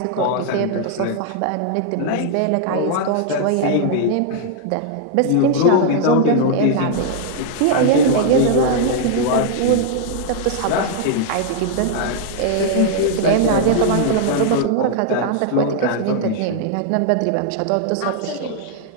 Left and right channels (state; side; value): different; both; correlation -0.01